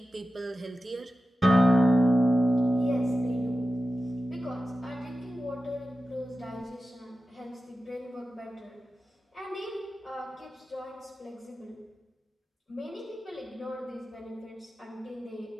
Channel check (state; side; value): normal; both; correlation 0.93